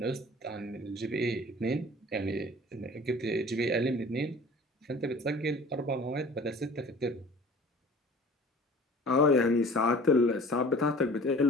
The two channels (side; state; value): both; normal; correlation 0.45